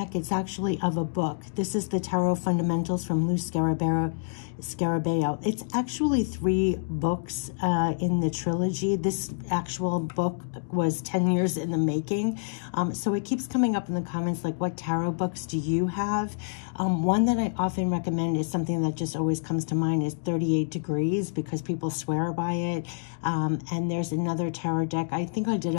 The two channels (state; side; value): silent; right; digital silence